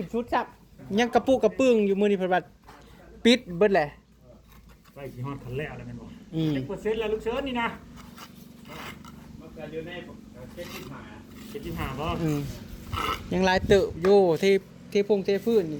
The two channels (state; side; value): identical; both; correlation 1.00